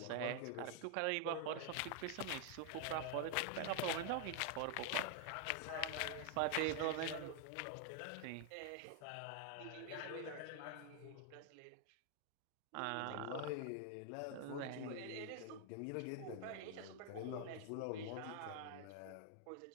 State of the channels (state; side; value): different; both; correlation 0.00